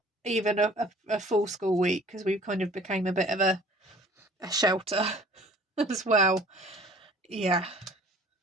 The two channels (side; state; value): both; normal; correlation 0.51